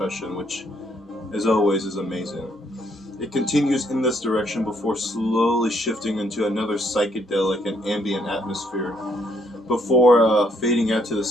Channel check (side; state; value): both; normal; correlation 0.70